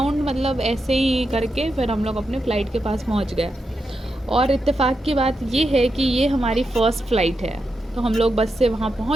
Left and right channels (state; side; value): normal; both; correlation 0.86